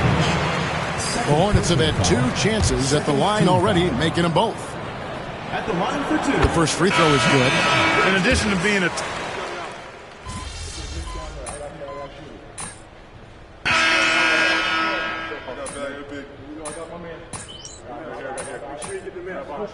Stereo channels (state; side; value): identical; both; correlation 1.00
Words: The Hornets have had 2 chances at the line already, making them both. At the line for 2. The first free throw is good. In addition to being a...